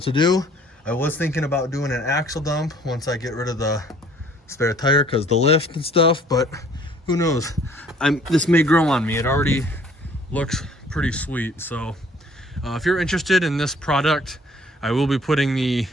do. I was thinking about doing an axle dump once I get rid of the spare tire because the lift and stuff, but who knows? This may grow on me. It already looks pretty sweet. So if you're interested in this product, I will be putting the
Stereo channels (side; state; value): both; normal; correlation 0.57